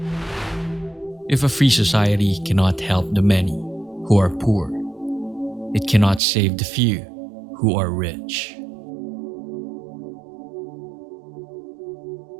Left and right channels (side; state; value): left; drops out; at 6.2 s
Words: If a free society cannot help the many who are poor, it cannot save the few who are rich.